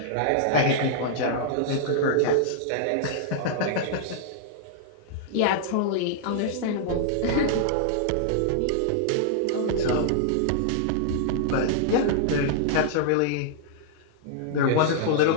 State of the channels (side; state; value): both; different; correlation -0.01